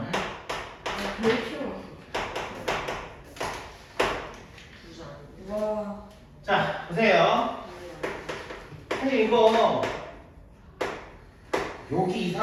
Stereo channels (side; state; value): both; identical; correlation 1.00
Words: 와. 자 보세요. 사실 이거 여기